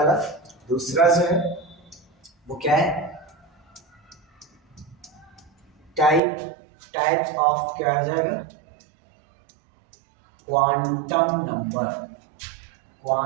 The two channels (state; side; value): drops out; left; at 6.2 s